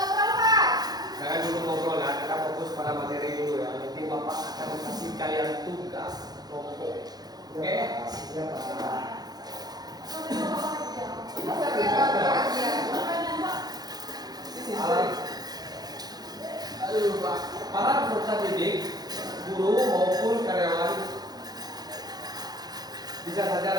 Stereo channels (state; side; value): late; left; 0.19 ms